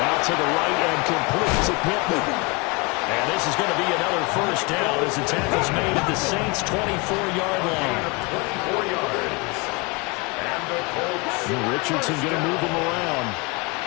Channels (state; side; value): quieter; right; 28.3 dB